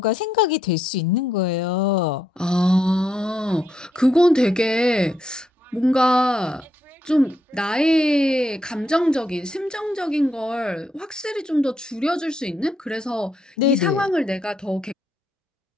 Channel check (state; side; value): normal; both; correlation 0.78